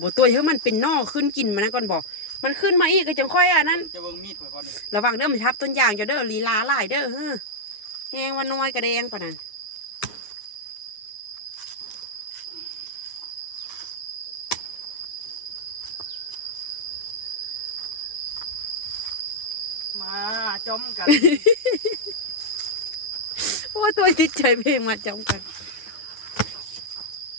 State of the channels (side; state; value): right; late; 9.5 ms